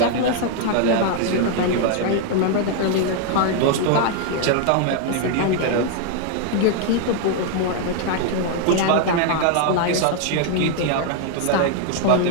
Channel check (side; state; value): both; different; correlation 0.00